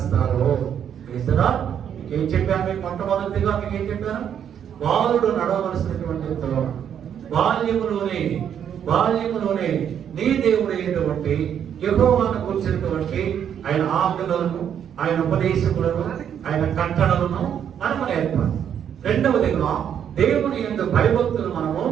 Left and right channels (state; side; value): quieter; left; 8.9 dB